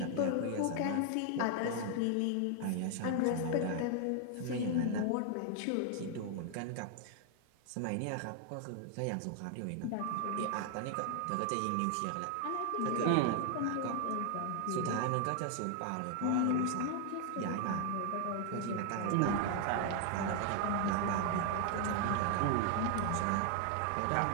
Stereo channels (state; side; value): different; both; correlation 0.00